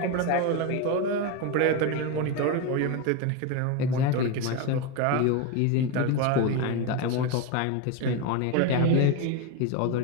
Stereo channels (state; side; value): different; both; correlation 0.03